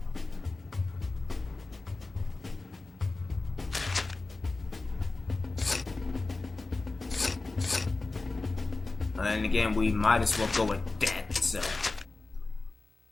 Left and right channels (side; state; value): right; quieter; 3.4 dB